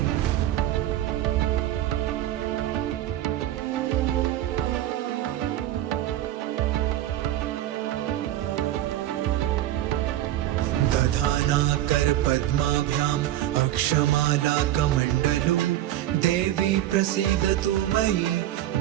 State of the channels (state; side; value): quieter; left; 13.4 dB